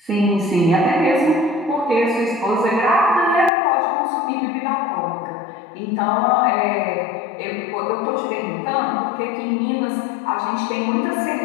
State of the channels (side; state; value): right; drops out; at 3.5 s